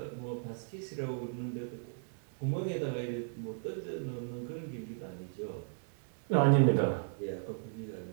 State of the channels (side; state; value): left; silent; digital silence